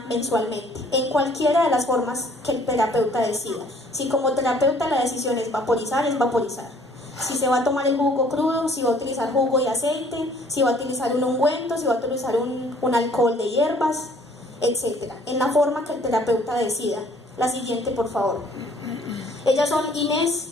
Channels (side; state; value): both; normal; correlation 0.58